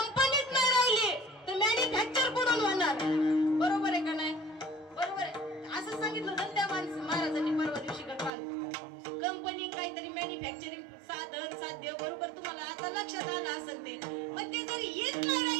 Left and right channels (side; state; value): left; drops out; at 8.3 s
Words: नाही राहिली तर मॅन्युफॅक्चर कुठून होणार? बरोबर आहे का नाही? बरोबर आहे. असं सांगितलं ना त्या महाराजांनी परवा दिवशी काल, कंपनी काहीतरी मॅन्युफॅक्चरिंग साधन साध्य. बरोबर, तुम्हाला आता लक्षात आलं असेल ते. पण ते जर हीच नाही